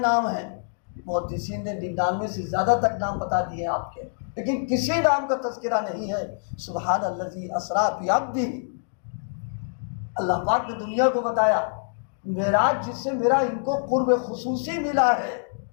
ہیں، محدثین نے 99 سے زیادہ تک نام بتا دیے ہیں آپ کے، لیکن کسی نام کا تذکرہ نہیں ہے. سبحان الذی اسریٰ بعبدہ، اللہ پاک نے دنیا کو بتایا معراج جس سے میرا ان کو قرب خصوصی ملا ہے،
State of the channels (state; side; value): silent; right; digital silence